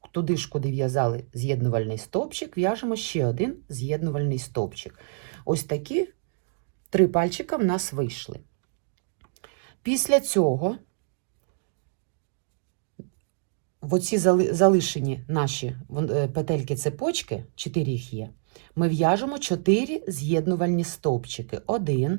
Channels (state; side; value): silent; left; digital silence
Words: туди ж, куди в'язали з'єднувальний стовпчик, в'яжемо ще один з'єднувальний стовпчик. Ось такі 3 пальчика в нас вийшли. Після цього в оці залишені наші петельки-цепочки, 4 їх є, ми в'яжемо 4 з'єднувальні стовпчики. 1,